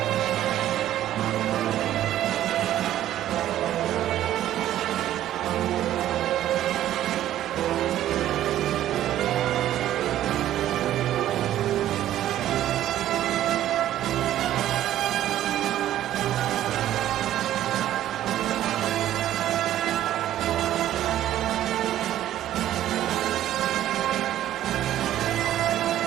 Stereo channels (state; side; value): quieter; left; 12.6 dB